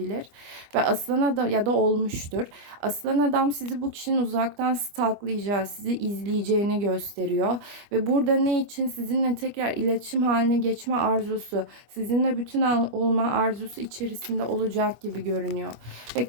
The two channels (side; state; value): left; late; 25 ms